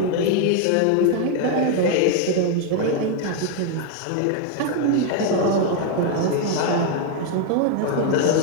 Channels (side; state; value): both; different; correlation 0.01